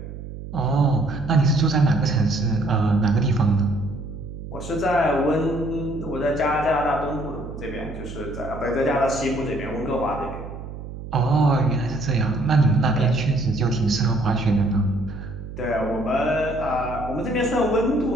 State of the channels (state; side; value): noise; right; hum, 11 dB below the sound